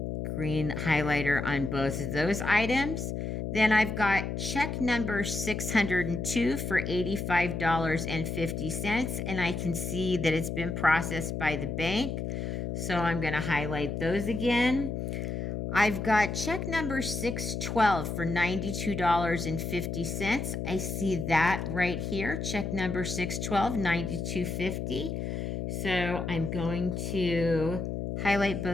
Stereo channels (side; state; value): left; noise; hum, 3 dB below the sound